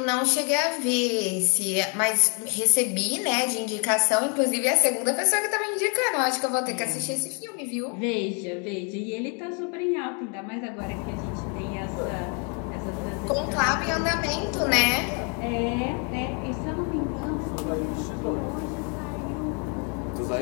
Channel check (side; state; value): right; quieter; 37.0 dB